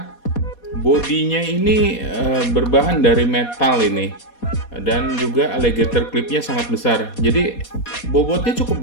bodinya ini berbahan dari metal ini, dan juga alligator clipnya sangat besar. Jadi bobotnya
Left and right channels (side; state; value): right; late; 4.2 ms